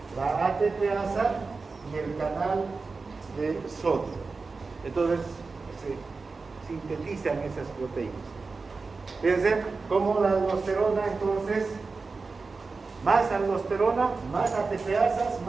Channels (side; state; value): left; quieter; 4.2 dB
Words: La ATPasa y el canal de sodio. Entonces se sintetizan esas proteínas. Fíjense cómo la aldosterona, entonces, más aldosterona, más ATPasas,